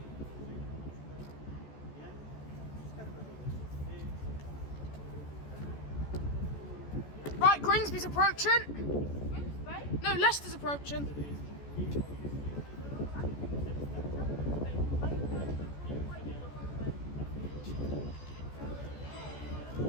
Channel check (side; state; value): right; late; 14 ms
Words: Right, Grimsby's approaching. No, Leicester's approaching.